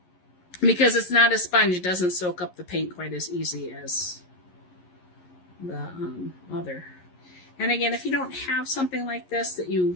because it's not a sponge. It doesn't soak up the paint quite as easy as the other. And again, if you don't have something like this that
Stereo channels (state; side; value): late; right; 11 ms